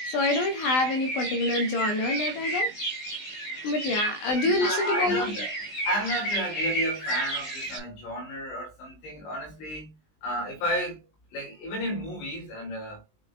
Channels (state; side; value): late; right; 19 ms